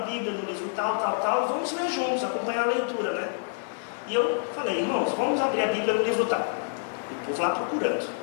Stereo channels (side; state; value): right; silent; digital silence